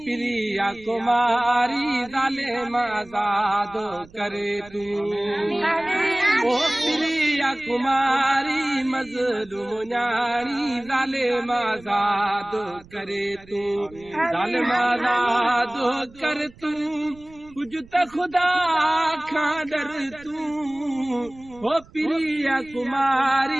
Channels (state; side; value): noise; right; rumble, 23 dB below the sound